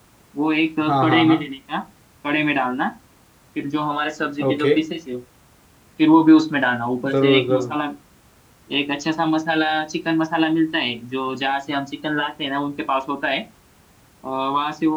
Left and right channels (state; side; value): identical; both; correlation 1.00